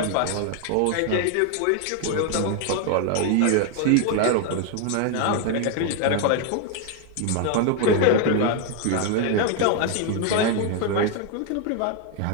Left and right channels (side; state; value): both; different; correlation 0.01